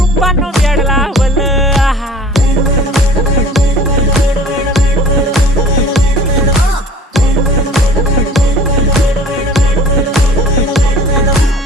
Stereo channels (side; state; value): both; normal; correlation 0.47